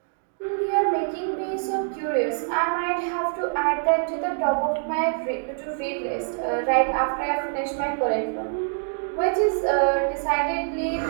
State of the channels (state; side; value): silent; left; 62 dB below the other